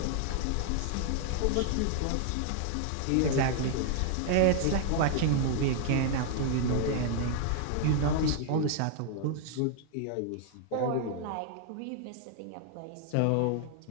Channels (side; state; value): both; different; correlation 0.00